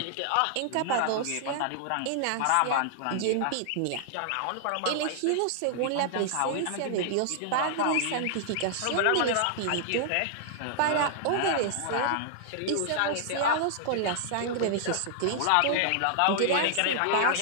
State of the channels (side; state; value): both; different; correlation -0.01